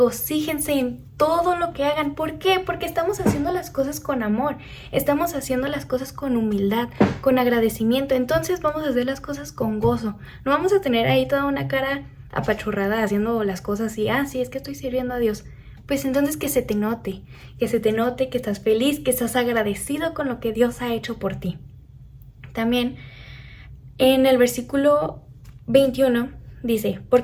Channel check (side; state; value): both; identical; correlation 1.00